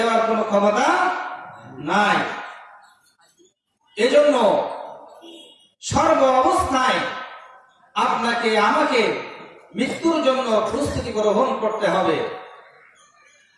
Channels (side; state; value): both; identical; correlation 1.00